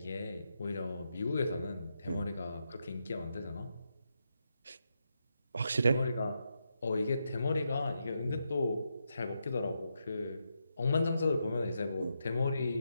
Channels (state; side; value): inverted; both; correlation -0.83